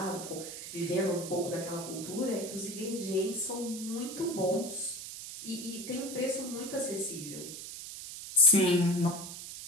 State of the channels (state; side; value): noise; right; hiss, 10 dB below the sound